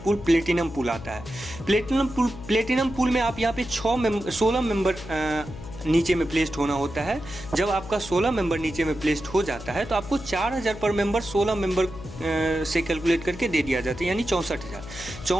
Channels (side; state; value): left; noise; hum, 13 dB below the sound